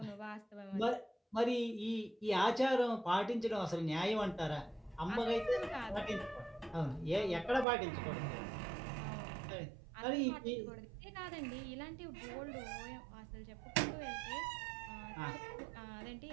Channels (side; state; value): left; drops out; at 7.7 s